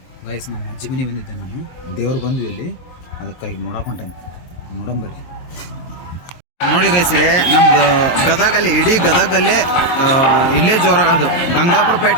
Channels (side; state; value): right; late; 23 ms